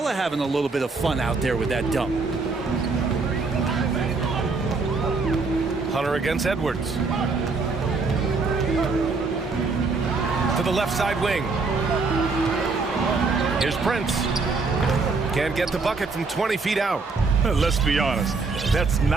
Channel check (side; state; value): left; quieter; 4.1 dB